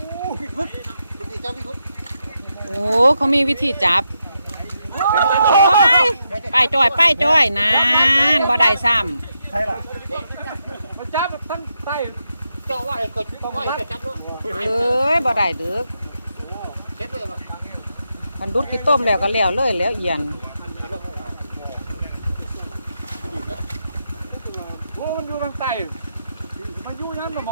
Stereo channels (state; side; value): inverted; both; correlation -0.83